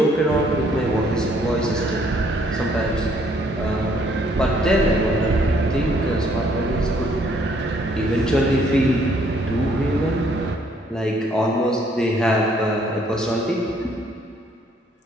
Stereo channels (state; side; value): normal; both; correlation 0.65